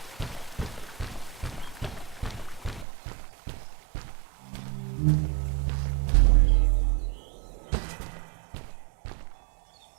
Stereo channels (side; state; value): left; drops out; at 2.9 s